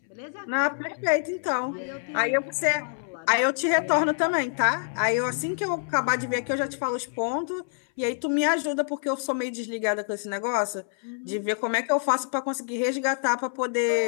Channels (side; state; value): right; silent; 61 dB below the other